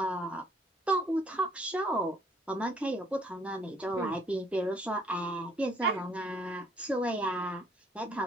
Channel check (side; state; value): both; normal; correlation 0.63